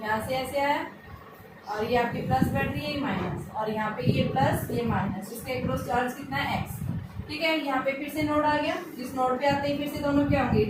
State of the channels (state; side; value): identical; both; correlation 1.00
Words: यहाँ से ऐसे आया, और ये आपकी प्लस बैटरी है माइनस, और यहाँ पे ये प्लस ये माइनस, इसके अक्रॉस चार्ज कितना है x, ठीक है। यहाँ पे फिर से नोड आ गया, इस नोड पे आते ही फिर से दोनों क्या होंगे,